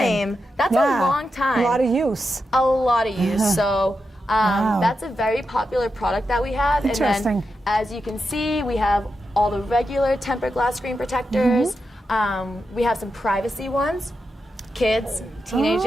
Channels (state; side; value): normal; both; correlation 0.88